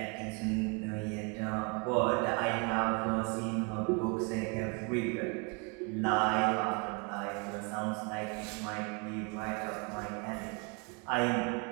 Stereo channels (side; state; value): left; quieter; 32.5 dB